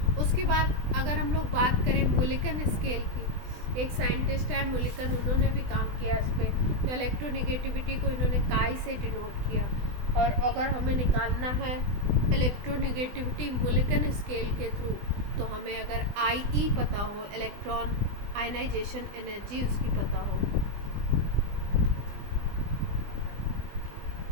उसके बाद अगर हम लोग बात करें मुलिकन स्केल की, एक साइंटिस्ट है मुलिकन, उन्होंने भी काम किया इस पर, तो इलेक्ट्रोनिगेटिविटी को इन्होंने काई से डिनोट किया, और अगर हमें निकालना है इलेक्ट्रोनिगेटिविटी मुलिकन स्केल के थ्रू, तो हमें अगर IE पता हो, इलेक्ट्रॉन आयनाइजेशन एनर्जी उसकी पता हो,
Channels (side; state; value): left; late; 20 ms